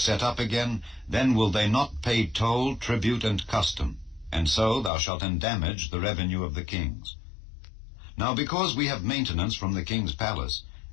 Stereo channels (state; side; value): drops out; right; at 4.9 s